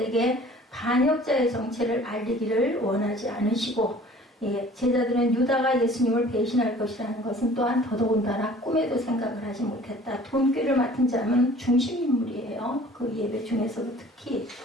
반역자의 정체를 알리기를 원하지 않으시고 예, 제자들은 유다가 예수님을 배신할 것이라는 것은 또한 더더군다나 꿈에도 생각을 하지 못했다. 돈꾀를 맡은 자는 중심인물이에요. 그 예배 중에서도 특히,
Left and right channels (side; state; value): both; normal; correlation 0.49